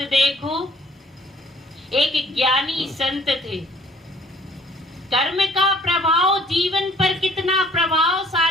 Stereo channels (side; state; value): both; normal; correlation 0.58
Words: देखो, एक ज्ञानी संत थे। कर्म का प्रभाव जीवन पर कितना